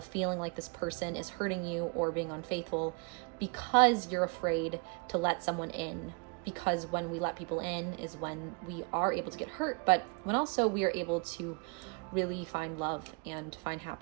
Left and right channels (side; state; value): left; quieter; 32.7 dB